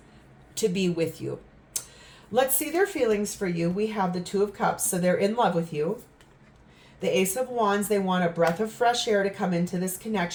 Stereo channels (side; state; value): both; identical; correlation 1.00